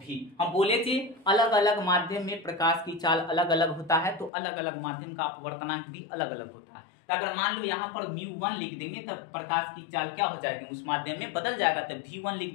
हम बोले थे अलग अलग माध्यम में प्रकाश की चाल अलग अलग होता है, तो अलग अलग माध्यम का अपवर्तनांक भी अलग अलग होता है। तो अगर मान लो यहाँ पर μ1 लिख देंगे तब प्रकाश की चाल क्या हो जाएगी, उस माध्यम में बदल जाएगा, तब v1 लिख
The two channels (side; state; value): right; drops out; at 4.3 s